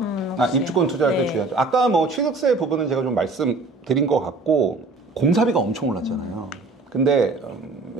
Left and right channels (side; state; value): left; quieter; 3.4 dB